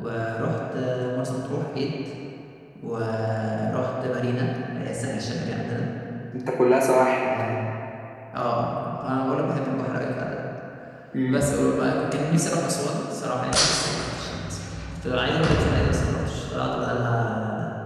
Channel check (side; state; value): both; identical; correlation 1.00